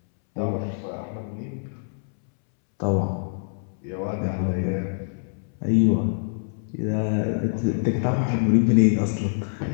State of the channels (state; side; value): silent; right; 62 dB below the other